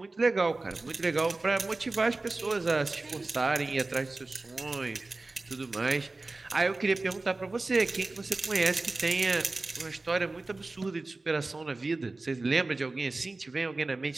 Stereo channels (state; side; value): quieter; left; 3.3 dB